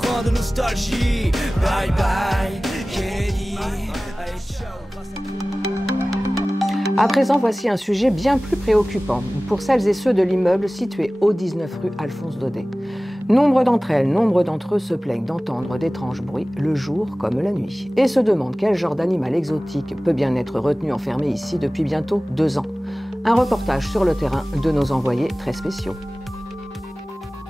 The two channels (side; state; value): both; normal; correlation 0.98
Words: de nostalgie. Bye bye, Kennedy. Allez, ciao, grâce à toi. À présent, voici un sujet bien plus préoccupant pour celles et ceux de l'immeuble situé au 19 rue Alphonse Daudet. Nombre d'entre eux se plaignent d'entendre d'étranges bruits le jour comme la nuit et se demandent quel genre d'animal exotique peut bien être retenu enfermé ici depuis bientôt 2 ans. Un reportage sur le terrain de nos envoyés très spéciaux.